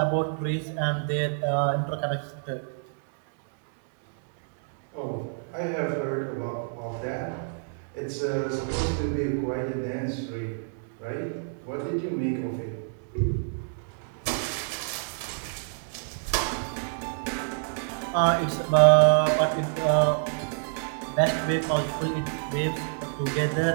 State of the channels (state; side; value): silent; left; digital silence